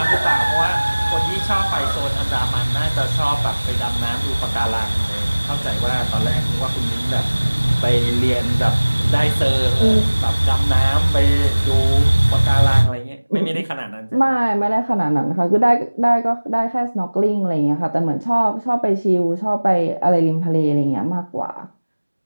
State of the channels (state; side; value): inverted; both; correlation -1.00